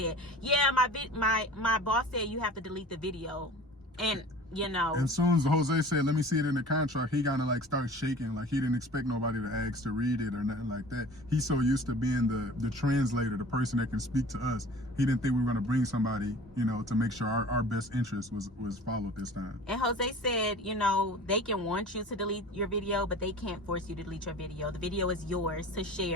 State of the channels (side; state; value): both; normal; correlation 0.42